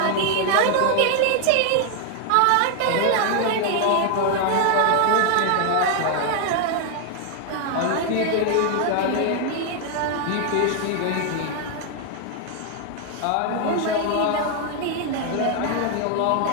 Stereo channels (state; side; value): different; both; correlation 0.00